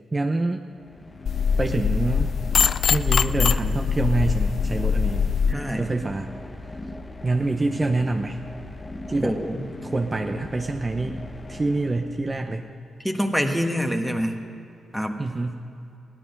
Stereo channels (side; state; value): both; normal; correlation 0.87